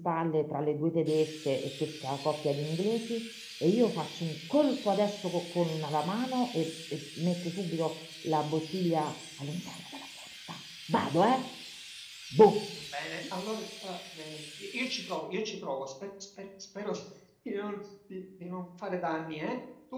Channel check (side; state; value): both; identical; correlation 1.00